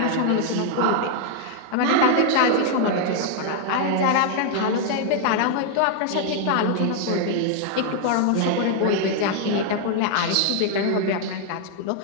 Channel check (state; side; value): different; both; correlation 0.00